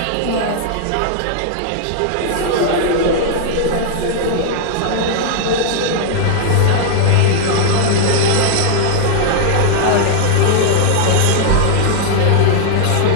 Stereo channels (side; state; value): both; different; correlation 0.00